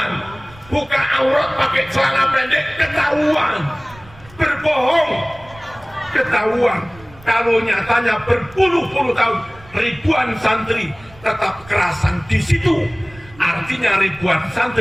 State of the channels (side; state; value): right; noise; rumble, 22 dB below the sound